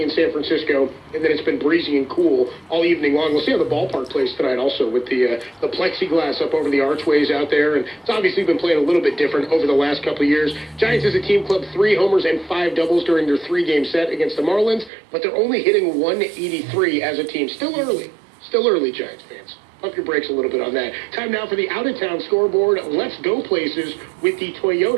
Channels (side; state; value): left; drops out; at 14.9 s